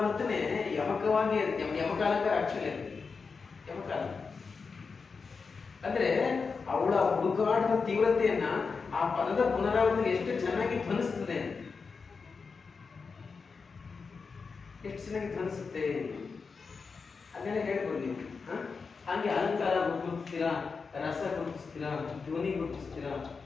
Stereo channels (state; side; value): quieter; right; 5.0 dB